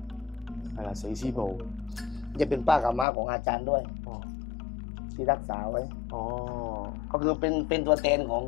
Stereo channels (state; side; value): drops out; right; at 3.1 s